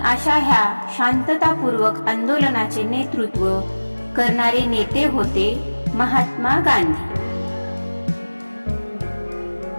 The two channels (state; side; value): inverted; both; correlation -1.00